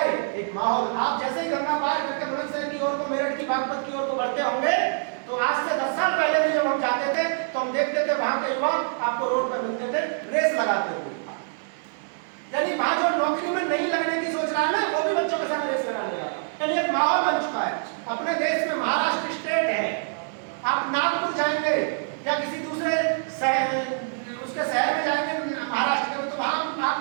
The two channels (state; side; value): silent; left; digital silence